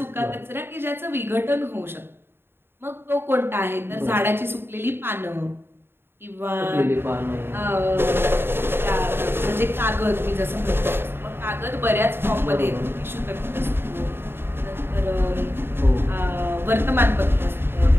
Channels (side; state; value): left; late; 0.11 ms